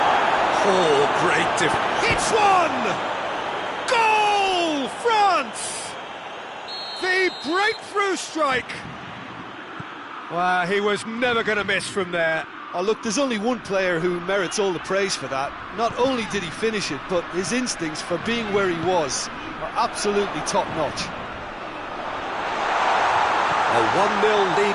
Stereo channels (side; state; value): both; identical; correlation 1.00